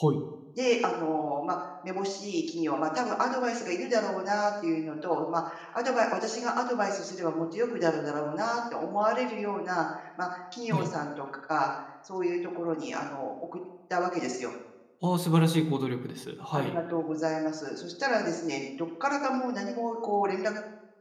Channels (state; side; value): identical; both; correlation 1.00